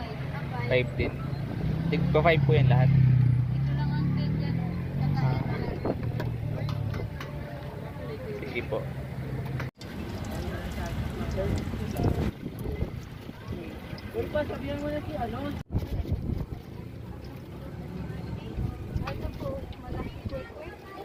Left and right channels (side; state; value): both; identical; correlation 1.00